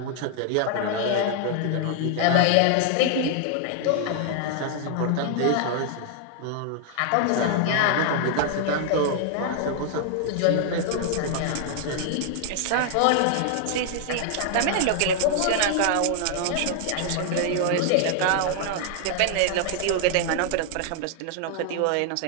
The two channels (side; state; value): both; different; correlation 0.00